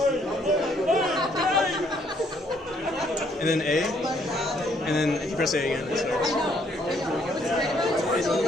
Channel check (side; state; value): both; normal; correlation 0.67